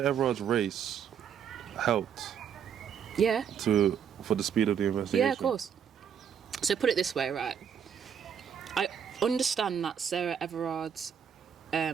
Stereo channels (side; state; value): left; quieter; 8.0 dB